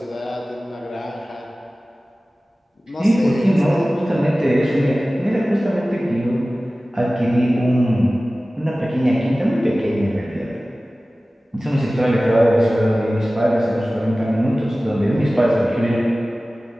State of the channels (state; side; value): normal; both; correlation 0.97